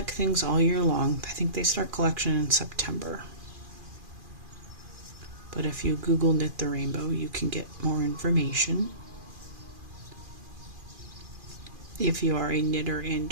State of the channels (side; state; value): left; late; 2.4 ms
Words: things all year long. I think they start collection in September. But if you Google Knit the Rainbow, you can get more information. If you are a knitter